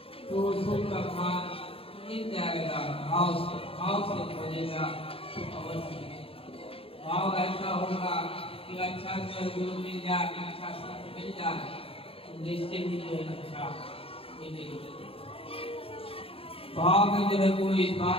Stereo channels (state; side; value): late; right; 0.27 ms